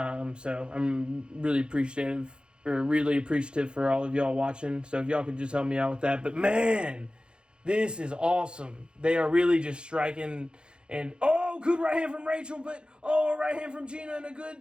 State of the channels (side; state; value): left; late; 0.052 ms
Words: I'm really appreciative for all of y'all watching. So if y'all could just help me out with that. But man, this is awesome. They are really just striking. And, good right hand from Rachel, but, right hand from Gina, and a